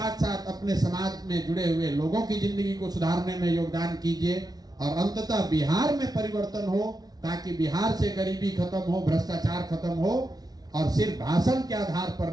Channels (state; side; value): late; left; 0.19 ms